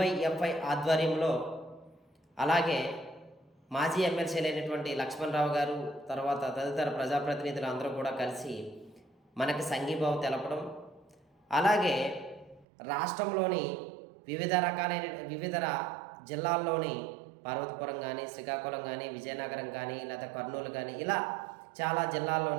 ఆధ్వర్యంలో, అలాగే మాజీ ఎమ్మెల్సీలైనటువంటి లక్ష్మణరావు గారు, తర్వాత తదితర ప్రజాప్రతినిధులు అందరూ కూడా కలిసి మనకి సంఘీభావం తెలపడం, అలాగే రాష్ట్రంలోని వివిధ జిల్లాల్లోని పార్వతీపురం కానీ, శ్రీకాకుళం కానీ, విజయనగరం కానీ, లేదా కర్నూలు కానీ, ఇలా చాలా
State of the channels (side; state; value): left; drops out; at 12.7 s